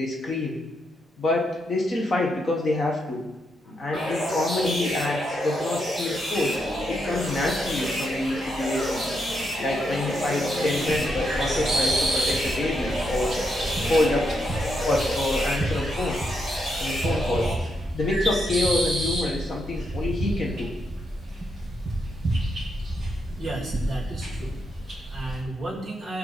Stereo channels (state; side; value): normal; both; correlation 0.80